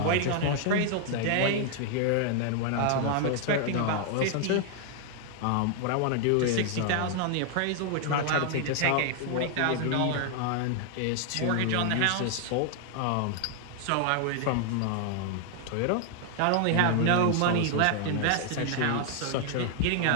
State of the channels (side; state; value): both; different; correlation 0.00